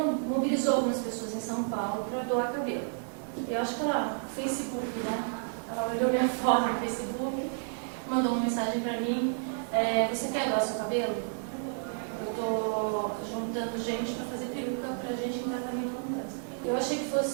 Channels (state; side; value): silent; left; 55 dB below the other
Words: mobilizou algumas pessoas em São Paulo para doar cabelo. Eu acho que ela, no Facebook, né? Ela olhou minha foto no Facebook, mandou uma mensagem para mim, você quer doar seu cabelo? tô juntando gente para fazer peruca pra gente em tratamento com câncer. Eu achei que